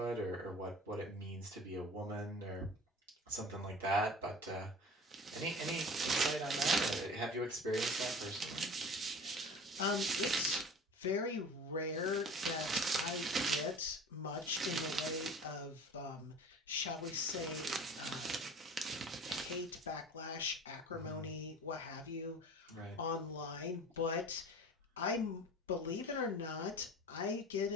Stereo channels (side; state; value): both; normal; correlation 0.40